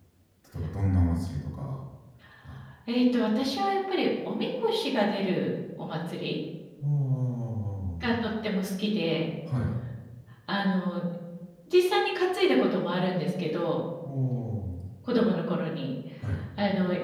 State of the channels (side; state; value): both; identical; correlation 1.00